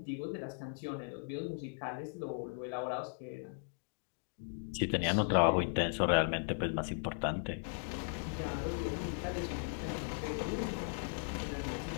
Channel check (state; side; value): silent; right; digital silence